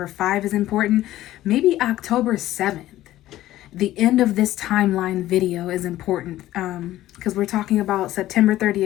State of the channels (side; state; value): right; quieter; 14.6 dB